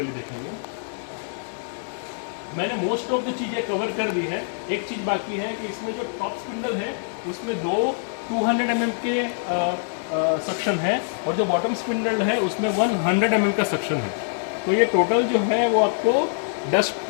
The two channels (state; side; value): silent; right; digital silence